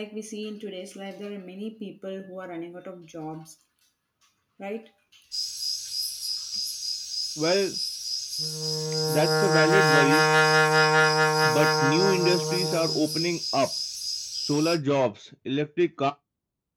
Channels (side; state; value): both; identical; correlation 1.00